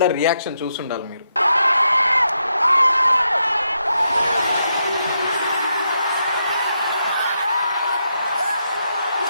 రియాక్షన్ చూసుండాలి మీరు.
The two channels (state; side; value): inverted; both; correlation -0.82